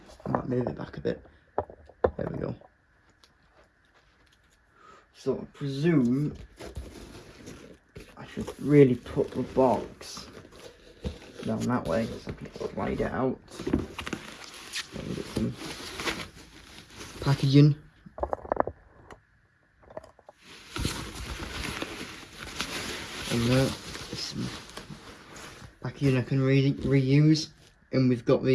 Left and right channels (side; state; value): both; identical; correlation 1.00